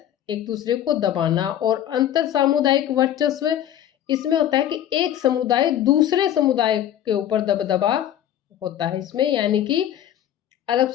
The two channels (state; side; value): quieter; right; 11.1 dB